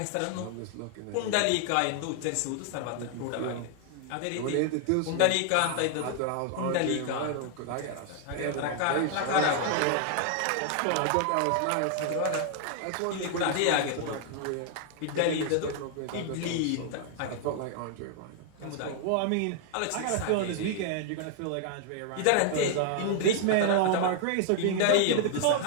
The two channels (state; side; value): different; both; correlation 0.00